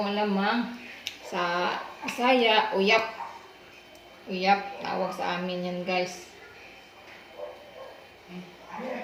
alamang. Sa Bisaya, uyap. Uyap. Tawag sa amin yan, guys.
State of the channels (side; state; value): both; identical; correlation 1.00